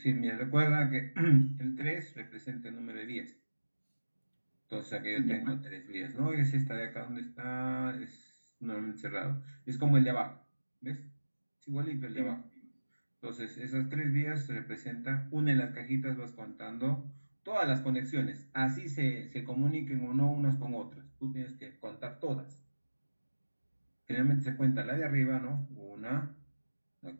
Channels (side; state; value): both; inverted; correlation -1.00